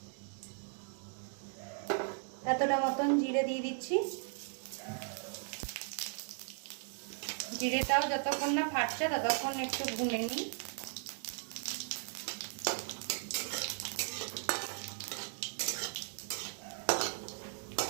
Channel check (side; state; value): left; silent; 53 dB below the other